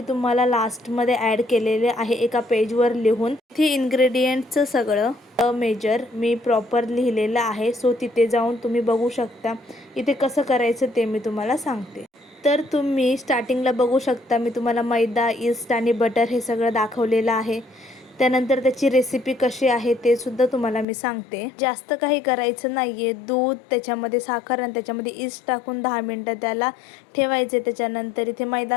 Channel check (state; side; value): drops out; right; at 20.9 s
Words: तुम्हाला लास्टमध्ये ॲड केलेले आहे एका पेजवर लिहून. इथे इन्ग्रेडियंटचं सगळं मेजर मी प्रॉपर लिहिलेलं आहे. सो तिथे जाऊन तुम्ही बघू शकता. इथे कसं करायचं ते मी तुम्हाला सांगते. तर तुम्ही स्टार्टिंगला बघू शकता, मी तुम्हाला मैदा, ईस्ट आणि बटर हे सगळं दाखवलेलं आहे. त्यानंतर त्याची रेसिपी कशी आहे ते सुद्धा तुम्हाला मी सांगते. जास्त काही करायचं नाही आहे. दूध, त्याच्यामध्ये साखर आणि त्याच्यामध्ये ईस्ट टाकून 10 मिनटं त्याला ठेवायचे. त्याच्यानंतर इथे